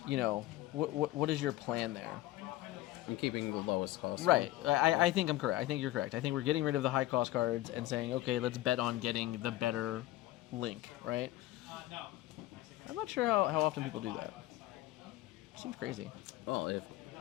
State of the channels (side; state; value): right; quieter; 16.0 dB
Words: you know, what is your plan there? I'm keeping the lowest cost. Right. I think I'm correct. I think you're correct. I think we're getting rid of the high cost cards and saying, okay, let's bet on getting the better link, right? I'm not sure how often people do that. Seems crazy. Well, if